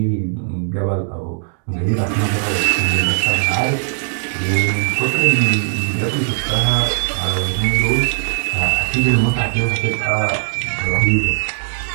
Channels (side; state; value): left; silent; 67 dB below the other